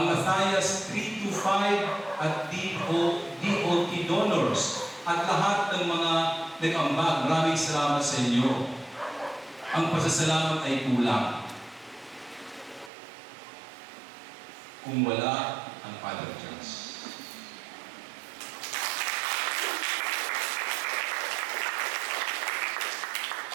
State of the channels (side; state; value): left; drops out; at 12.9 s